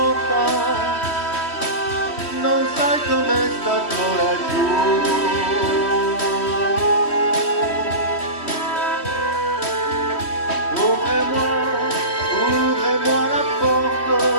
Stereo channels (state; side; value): late; right; 3.1 ms